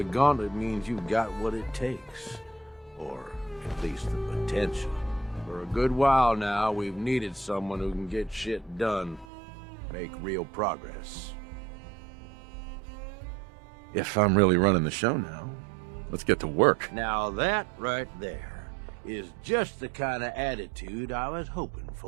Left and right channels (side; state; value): left; drops out; at 9.2 s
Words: gauntlet means you've got what it takes. Or at least the potential. For a good while now, we've needed someone who can get shit done. Make real progress. If I'm really running the show now, let's get to work. Now that right there is just the kind of attitude I was hoping